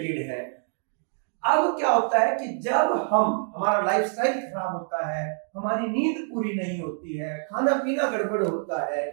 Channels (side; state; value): left; silent; digital silence